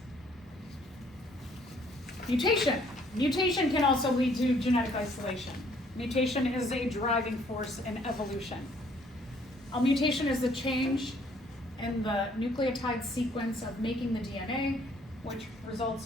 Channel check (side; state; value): both; normal; correlation 0.63